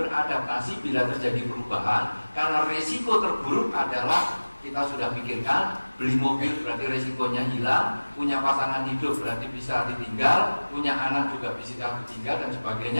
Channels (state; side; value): inverted; both; correlation -1.00